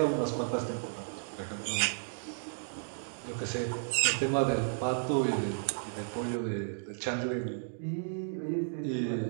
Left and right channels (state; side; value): silent; left; digital silence